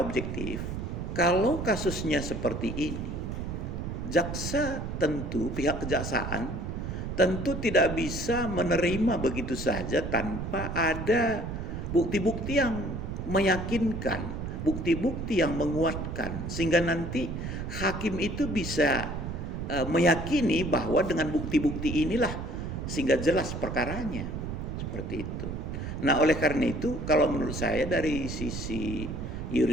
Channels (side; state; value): right; noise; rumble, 5 dB below the sound